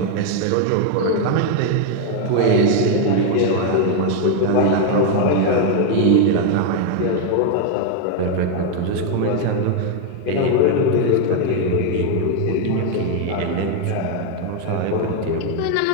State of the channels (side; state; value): both; different; correlation 0.01